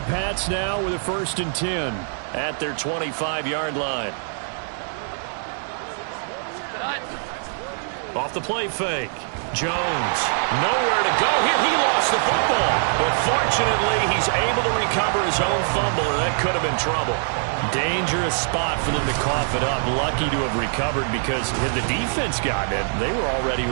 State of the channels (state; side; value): silent; left; digital silence